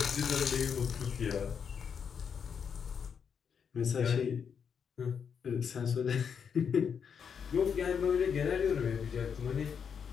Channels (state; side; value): quieter; right; 7.0 dB